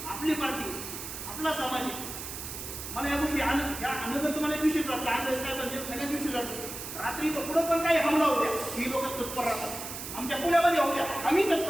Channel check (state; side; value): noise; right; hiss, 8 dB below the sound